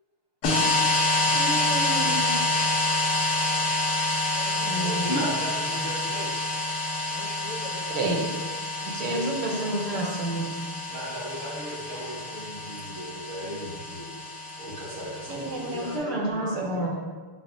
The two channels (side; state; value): right; late; 6.8 ms